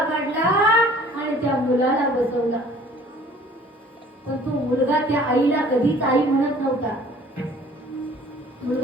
काढला आणि त्या मुलाला बसवला. पण तो मुलगा त्या आईला कधीच आई म्हणत नव्हता.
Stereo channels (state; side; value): normal; both; correlation 0.52